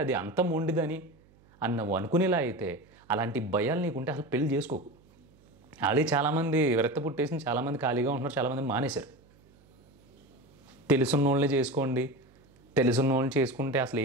అది అంత మొండిదని అని నువ్వు అనుకునేలా అయితే అలాంటి భయాలు నీకుంటే అసలు పెళ్ళి చేసుకోకు. ఆల్రెడీ చాలామంది విరక్త పుట్టేసి చాలామంది ఖాళీగా ఉంటున్నారు, చాలామంది మానేశారు. తెలుసున్న వాళ్ళని చేసుకోండి, తెలుసున్న వాళ్ళని చేసుకుంటే అసలు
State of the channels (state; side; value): noise; right; hum, 29 dB below the sound